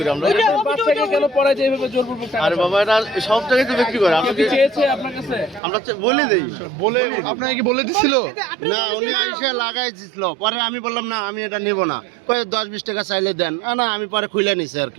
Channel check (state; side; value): drops out; left; at 5.6 s